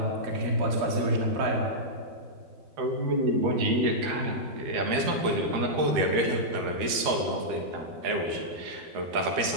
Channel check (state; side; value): late; left; 13 ms